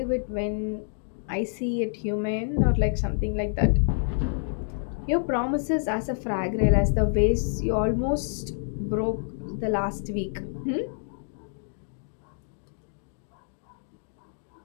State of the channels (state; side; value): silent; right; digital silence